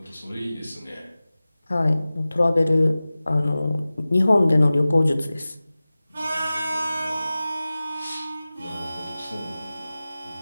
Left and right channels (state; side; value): inverted; both; correlation -0.97